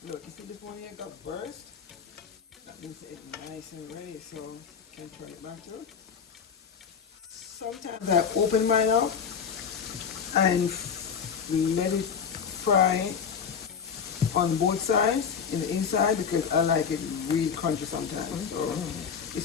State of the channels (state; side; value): quieter; right; 6.8 dB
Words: Look, you see this one here got burst? That means it's nice and ready, so you can turn it back to it. Sometimes I open mine up and let it fry on both sides, in the inside, because I like it really crunchy sometimes. So